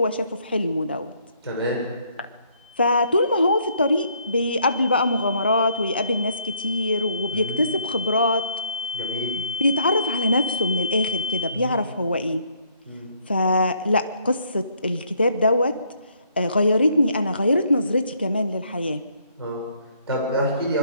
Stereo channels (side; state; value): both; inverted; correlation -0.67